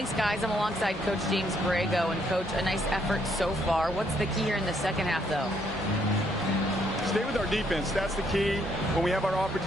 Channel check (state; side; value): normal; both; correlation 0.71